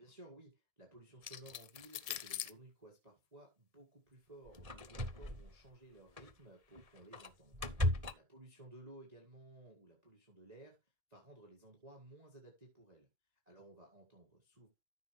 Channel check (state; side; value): late; left; 1.8 ms